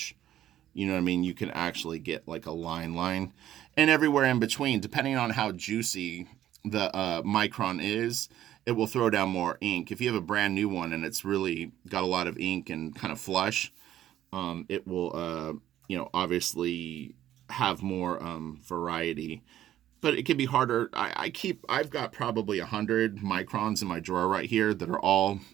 you know what I mean? You can actually get like a line. And everywhere in between, depending on how juicy the micron is, it will throw down more ink. If you have a brand new one and it's really got a lot of ink and kind of flush, it will, you know, obviously have more variety. But it can be harder. I've got probably 100 microns in my drawer right here that are all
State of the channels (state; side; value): quieter; left; 12.3 dB